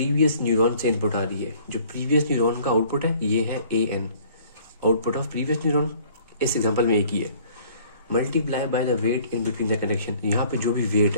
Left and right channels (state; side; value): inverted; both; correlation -0.55